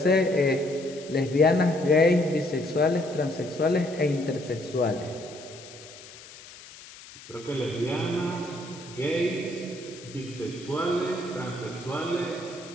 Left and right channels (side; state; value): left; noise; hiss, 18 dB below the sound